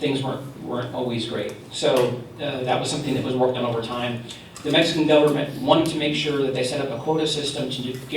weren't always great. So that was something that was worked on over time. The Mexican government wanted to make sure that they set up a quota system to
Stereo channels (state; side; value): identical; both; correlation 1.00